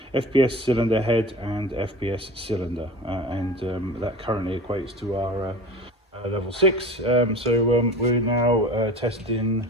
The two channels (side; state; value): both; normal; correlation 0.36